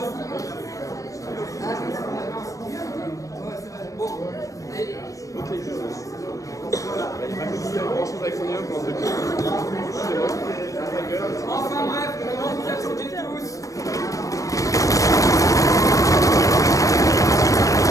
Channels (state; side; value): late; right; 0.16 ms